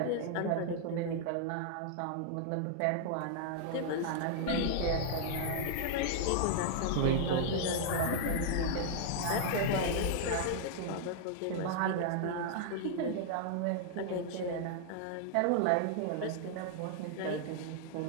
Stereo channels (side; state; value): both; different; correlation -0.01